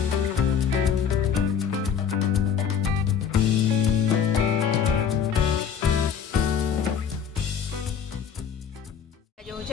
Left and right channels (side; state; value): right; quieter; 7.6 dB